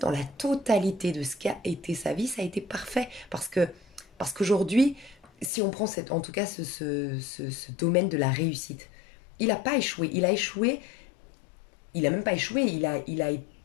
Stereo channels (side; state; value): right; drops out; at 5.5 s